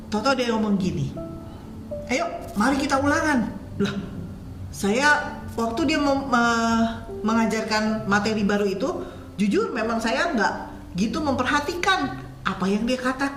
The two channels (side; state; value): both; identical; correlation 1.00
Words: tahu-tahu dia ngomong gini, ayo mari kita ulangan. Lah, saya waktu dia mengajarkan materi baru itu, jujur memang saya nggak gitu memperhatikan apa yang dia